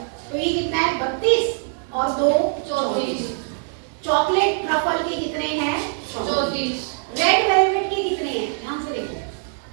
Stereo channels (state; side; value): silent; left; 59 dB below the other